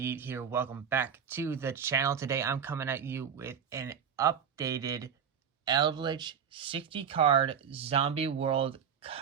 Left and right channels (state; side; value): quieter; left; 7.6 dB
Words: here. Welcome back to the channel. Today I'm coming at you with an updated Eldlich 60 card Zombie World